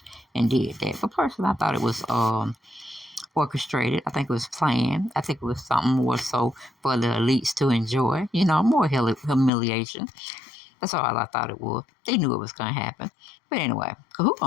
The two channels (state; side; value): drops out; right; at 9.5 s